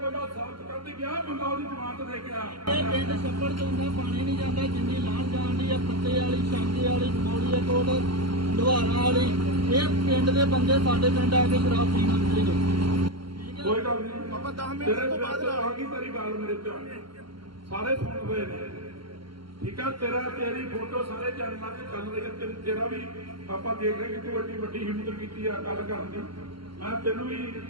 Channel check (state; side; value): late; left; 0.73 ms